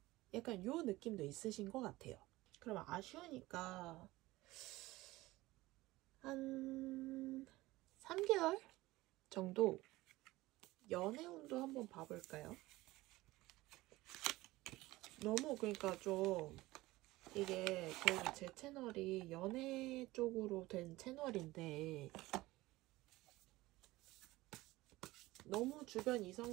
약간 요 느낌도 있으신 것 같아요. 그럼 아쉬우니까 한 3개월 정도 연애운도 한번 봐볼까요? 너무 그러니까 좀 이게 그래도 제 채널이 연애 쪽으로 된 채널인데 너무 주변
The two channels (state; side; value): quieter; left; 18.9 dB